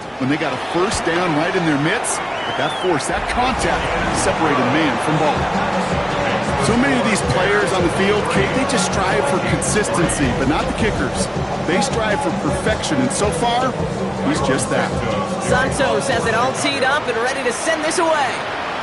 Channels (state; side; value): identical; both; correlation 1.00